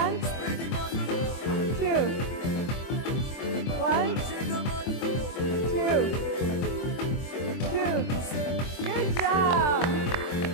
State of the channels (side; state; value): right; late; 24 ms